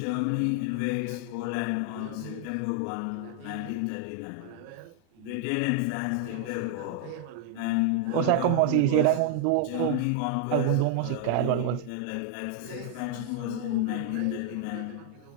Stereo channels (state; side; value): different; both; correlation 0.00